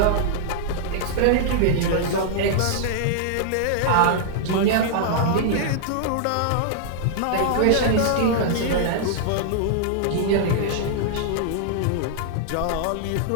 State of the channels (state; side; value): different; both; correlation -0.01